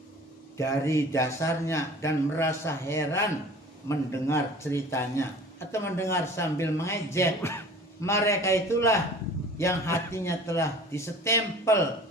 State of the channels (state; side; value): normal; both; correlation 0.44